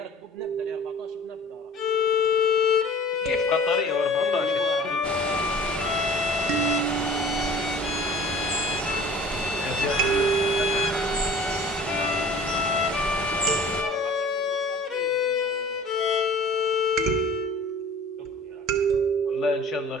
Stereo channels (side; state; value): both; normal; correlation 0.46